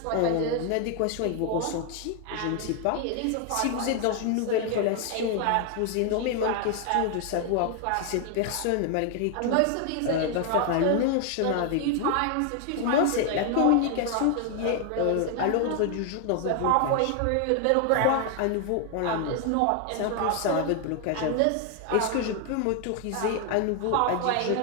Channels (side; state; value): both; different; correlation 0.00